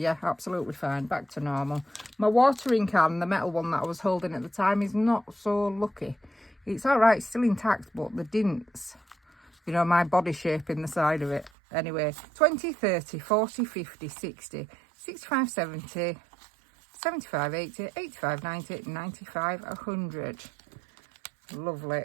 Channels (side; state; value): left; drops out; at 11.5 s